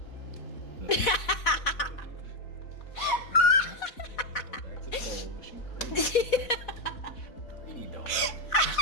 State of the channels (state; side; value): late; right; 4.1 ms